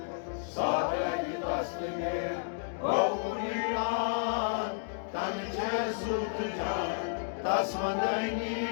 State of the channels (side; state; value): right; silent; digital silence